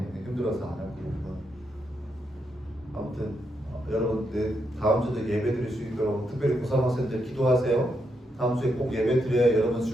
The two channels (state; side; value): normal; both; correlation 0.81